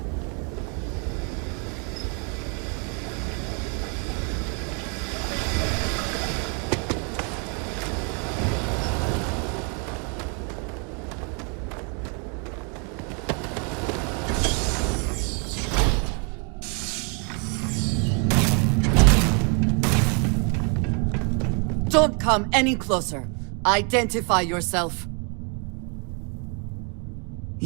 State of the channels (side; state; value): left; quieter; 36.6 dB